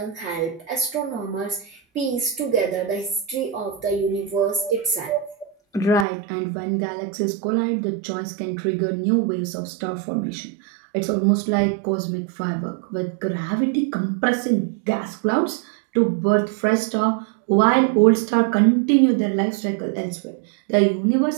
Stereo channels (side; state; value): left; drops out; at 6.1 s